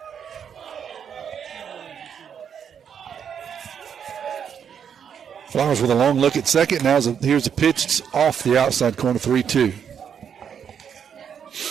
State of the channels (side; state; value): left; quieter; 7.8 dB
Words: Flowers with a long look at second. Now here's a pitch. It's off the outside corner, 3-2.